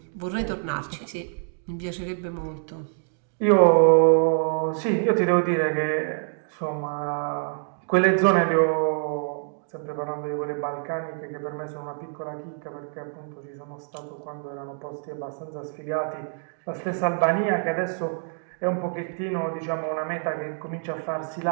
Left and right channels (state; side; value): silent; left; 61 dB below the other